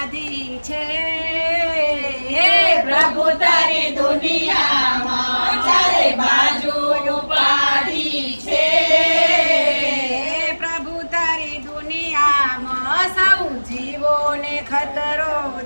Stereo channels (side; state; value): both; inverted; correlation -1.00